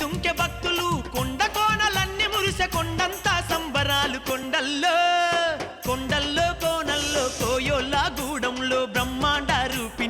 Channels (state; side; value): identical; both; correlation 1.00